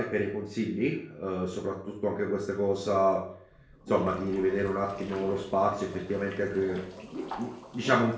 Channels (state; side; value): identical; both; correlation 1.00